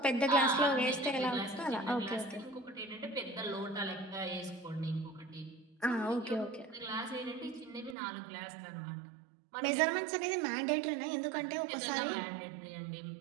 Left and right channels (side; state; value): left; drops out; at 8.0 s